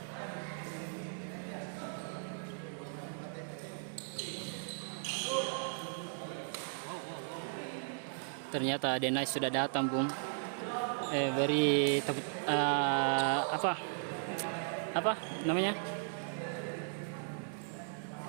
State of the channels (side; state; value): left; silent; 53 dB below the other